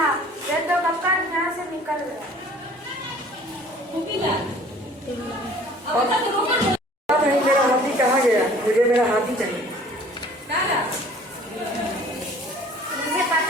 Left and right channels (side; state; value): both; normal; correlation 0.51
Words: वे तो कब का यहाँ से निकल गया। नहीं, मेरा हाथी कहाँ गया? मुझे मेरा हाथी चाहिए। मुझे